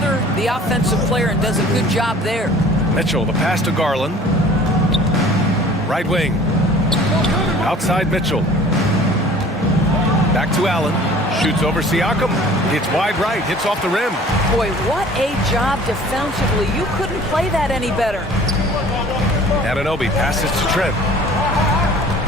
the offensive player and does a good job there. Mitchell, the pass to Garland. Right wing. Outside Mitchell. Back to Allen. Shoots over Siakam. Hits wide right. Hits off the rim. Boy, what a job defensively. You couldn't play that any better. Anunoby passes to Trent.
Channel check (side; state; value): both; normal; correlation 0.48